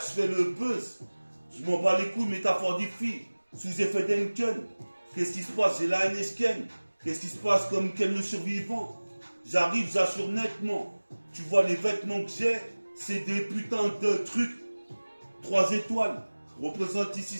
je fais le buzz. Je m'en bats les couilles, métaphore des filles. Sous effet d'Enken. Qu'est-ce qui se passe? J'ai la NSken. Qu'est-ce qui se passe comme quel le survivant? J'arrive, j'assure nettement. Tu vois les vêtements que j'ai, c'est des putains de trucs. 3 étoiles. Représente ici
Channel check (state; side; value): inverted; both; correlation -1.00